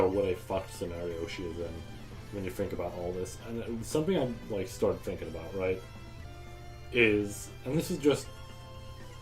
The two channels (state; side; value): identical; both; correlation 1.00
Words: what a fucked scenario she is in when you think about all this. And something I, like, started thinking about, right, is, and this is just